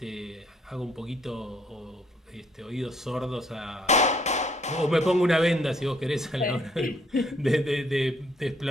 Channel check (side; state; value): both; normal; correlation 0.66